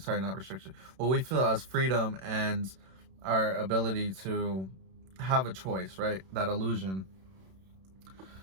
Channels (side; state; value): left; late; 31 ms